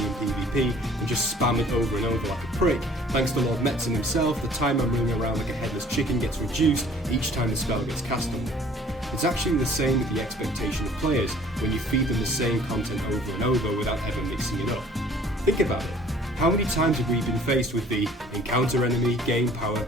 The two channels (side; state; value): both; normal; correlation 0.54